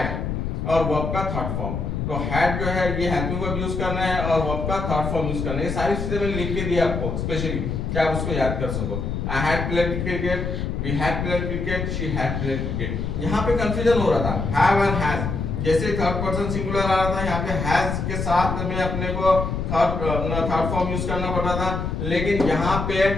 और वर्ब का थर्ड फॉर्म। तो हैड जो है ये हेल्पिंग वर्ब यूज करना है और वर्ब का थर्ड फॉर्म यूज करना है। ये सारी चीजें मैंने लिख के दी आपको स्पेशली कि आप उसको याद कर सको। I had played cricket, we had played cricket, she had played cricket. यहाँ पे कंफ्यूजन हो रहा था हैव एंड हैज, जैसे थर्ड पर्सन सिंगुलर आ रहा था यहाँ पे हैज के साथ में अपने को थर्ड फॉर्म यूज करना पड़ रहा था, लेकिन यहाँ पे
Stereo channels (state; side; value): noise; left; rumble, 3 dB below the sound